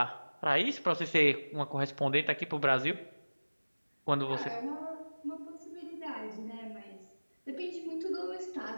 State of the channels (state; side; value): inverted; both; correlation -1.00